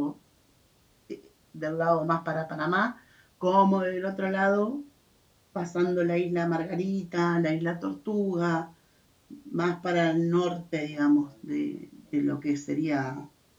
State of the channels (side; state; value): both; identical; correlation 1.00